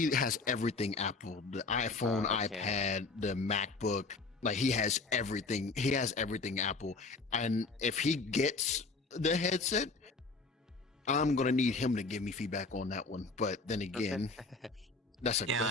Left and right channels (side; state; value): right; quieter; 3.8 dB